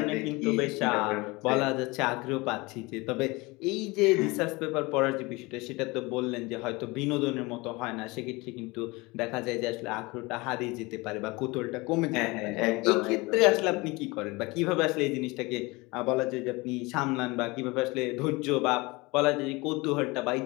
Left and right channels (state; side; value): quieter; right; 23.9 dB